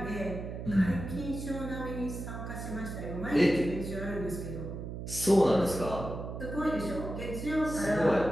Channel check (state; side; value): noise; right; hum, 7 dB below the sound